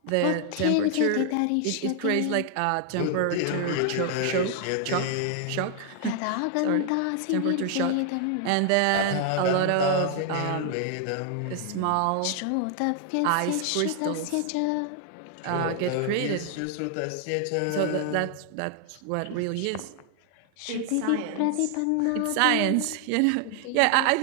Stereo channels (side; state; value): both; different; correlation 0.00